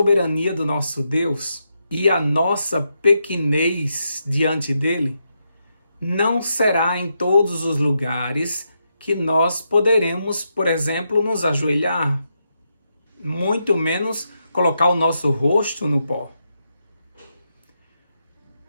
do nosso Deus e a nossa pequenez diante dele, não será em todos os lugares que nós poderemos, por exemplo, nos ajoelhar, muito menos colocar o nosso rosto no pó.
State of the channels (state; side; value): inverted; both; correlation -0.83